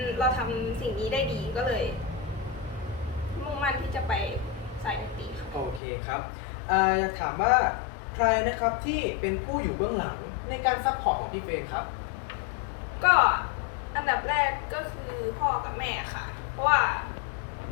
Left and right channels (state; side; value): drops out; right; at 5.8 s